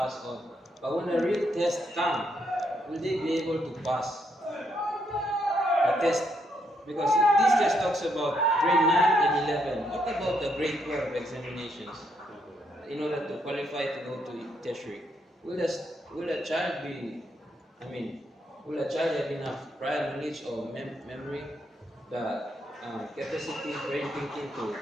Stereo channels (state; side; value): normal; both; correlation 0.75